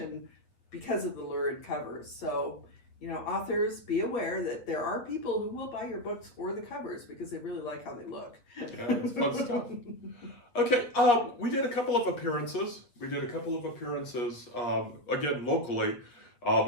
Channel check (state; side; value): late; right; 8.3 ms